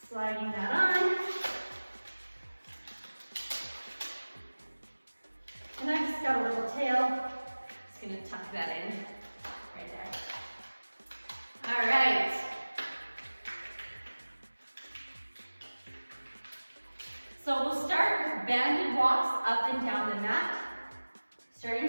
Sliding that on. And I just got a little tail. Just gonna tuck that in right there. All right. So we'll start with banded walks up and down the mat. Starting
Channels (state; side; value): inverted; both; correlation -1.00